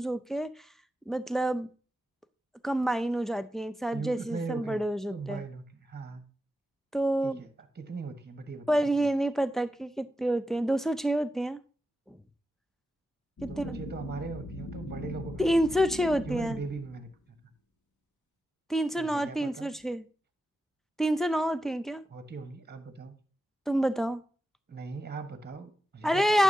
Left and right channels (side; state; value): both; normal; correlation 0.90